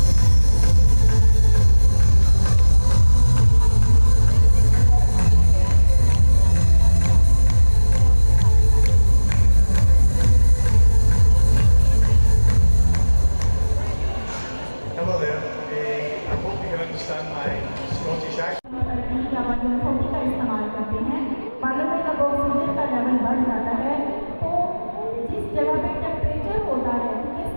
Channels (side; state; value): both; inverted; correlation -1.00